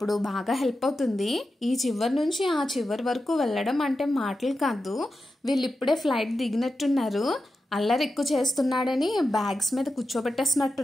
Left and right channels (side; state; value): both; normal; correlation 0.90